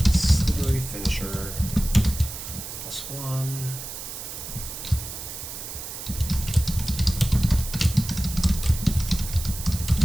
Slithery Finisher. +1.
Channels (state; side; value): noise; right; hiss, 9 dB below the sound